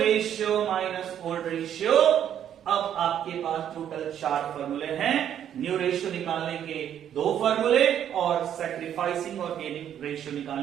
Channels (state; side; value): quieter; left; 9.9 dB